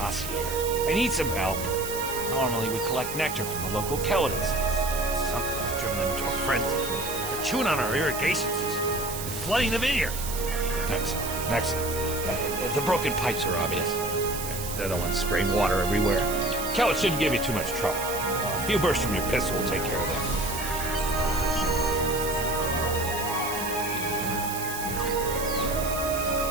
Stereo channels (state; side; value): noise; right; hiss, 7 dB below the sound